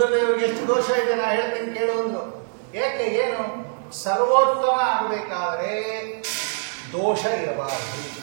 ಎಷ್ಟು ದೋಷ ಇದೆ, ನಾ ಹೇಳ್ತೀನಿ ಕೇಳು ಅಂದ್ರು. ಏಕೆ, ಏನು? ಸರ್ವೋತ್ತಮ ಆಗಬೇಕಾದರೆ ದೋಷ ಇರಬಾರದು.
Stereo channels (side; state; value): left; silent; 62 dB below the other